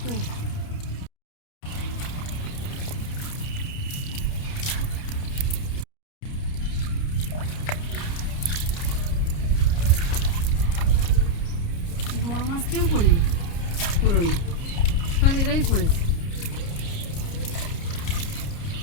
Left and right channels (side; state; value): right; late; 29 ms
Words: বড় মাছ কেউ করিনি। পুরনো, সব এরাই পড়েছে।